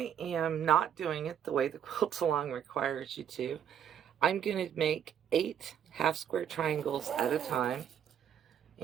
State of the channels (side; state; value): left; quieter; 9.0 dB